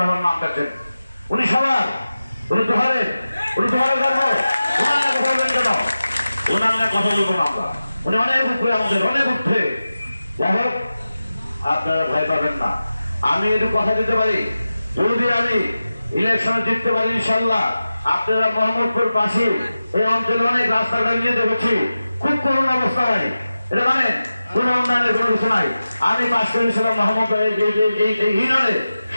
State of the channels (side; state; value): both; inverted; correlation -0.94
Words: নাম কাছেন, উনি সবার, উনি দোহারের, উনি দোহারের গর্ব, ওনার কথা বলবেন কেন? ওনার না কথা বলবো না আমরা, উনি অনেক উপরে, আমাদের অনেক উঠে। যাই হোক, আপনারা ভয় পাবেন না। আমি একটু কথা দিতে পারি, যদি আমি ইলেকশনে জিততে পারি ইনশাল্লাহ, আপনারা মোহাম্মদপুর পাশে এই অঞ্চলে অনেক রাস্তাঘাট নিয়ে দেখেছি, খুব করুণ অবস্থা ভাই, এটা মানে কোন উন্নয়নের কোনো কিছু নাই। আমি পাশ করেছিলাম মোহাম্মদ এই ইউনিয়নে,